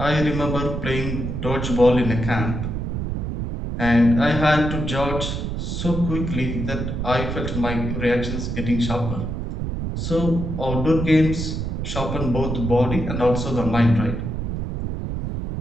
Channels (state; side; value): noise; right; rumble, 3 dB below the sound